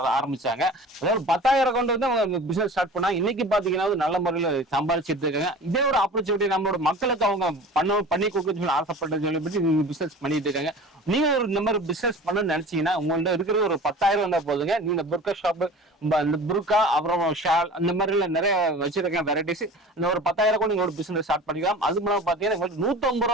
ஆரம்பிச்சாங்க. அதாவது 10,000 கொண்டு வந்து அவங்க பிசினஸ் ஸ்டார்ட் பண்ணா இன்னைக்கு பாத்தீங்கன்னா நல்ல முறையில சம்பாதிச்சிட்டு இருக்காங்க. இதே ஒரு ஆப்பர்ச்சுனிட்டி நம்மளோட மக்களுக்கு அவங்க பண்ணி கொடுக்க சொல்லி ஆசைப்பட்ட சொல்லி பிசினஸ் பண்ணிட்டு இருக்காங்க. நீங்க ஒரு இந்த மாதிரி பிசினஸ் பண்ணணும்னு நினைச்சீங்கன்னா உங்கள்ட்ட இருக்கிற ஒரு 10,000 வந்தா போதுங்க. நீங்க புர்கா ஷாப், இந்த புர்கா அப்புறம் ஷால் அந்த மாதிரி நிறைய வச்சிருக்கேன் வெரைட்டிஸ். இந்த ஒரு 10,000 கூட நீங்க ஒரு பிசினஸ் ஸ்டார்ட் பண்ணிக்கலாம். அது மூலம் பாத்தீங்கன்னா 150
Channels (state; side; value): normal; both; correlation 0.39